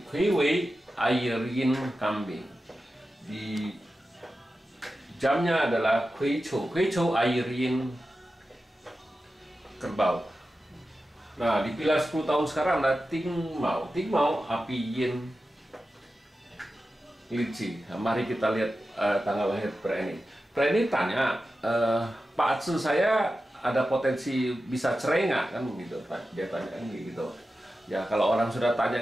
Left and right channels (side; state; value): both; normal; correlation 0.93